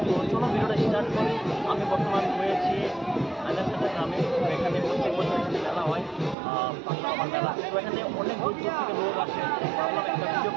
তো চলো ভিডিওটা স্টার্ট করি। আমি বর্তমান রয়েছি আইলারসাটা গ্রামে। এখানে প্রত্যেক বছর এখানে মেলা হয়, পাগলা বাবার মেলা। তো এখানে অনেক দূর থেকে লোক আসে। ভাবলাম একটা ভিডিও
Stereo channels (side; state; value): left; drops out; at 6.4 s